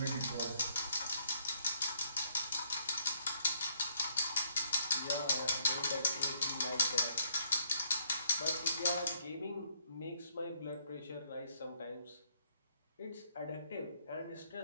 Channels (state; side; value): inverted; both; correlation -0.69